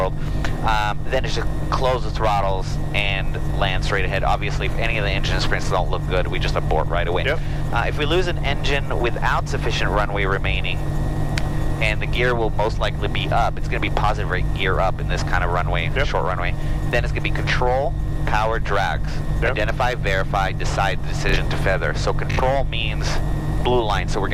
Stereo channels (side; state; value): both; identical; correlation 1.00